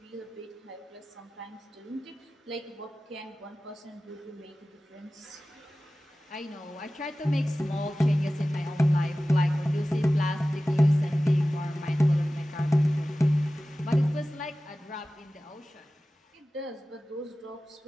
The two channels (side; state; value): both; normal; correlation 0.96